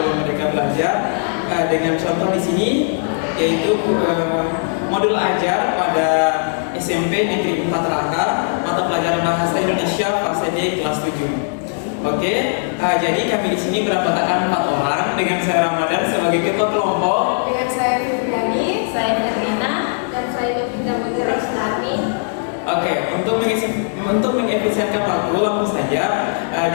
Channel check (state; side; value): silent; right; digital silence